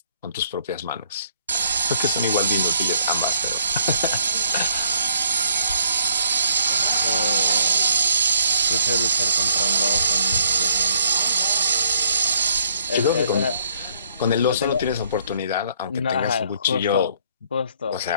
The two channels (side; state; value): both; inverted; correlation -0.66